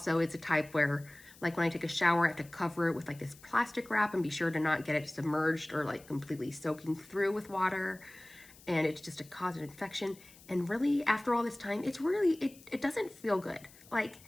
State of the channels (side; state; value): left; noise; hiss, 23 dB below the sound